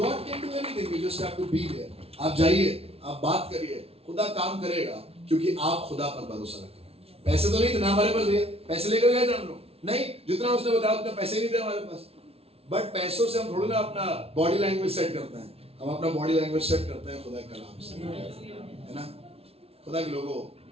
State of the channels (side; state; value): left; late; 0.29 ms